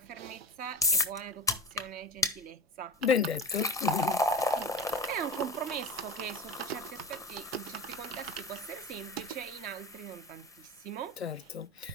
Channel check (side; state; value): both; normal; correlation 0.31